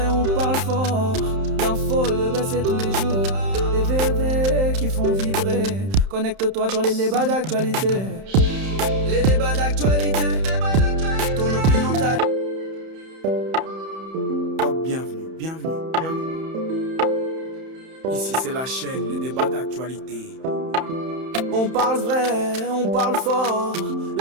on parle fort. L'info, le baisser tous les jours. Des VV qui font vibrer. Connecte-toi sur les débats d'actualité. Les débats d'actualité, ton opinion, ta... Bienvenue, bienvenue, bienvenue. Ici c'est la chaîne, les débats d'actualité. On parle vrai, on parle fort.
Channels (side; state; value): left; late; 31 ms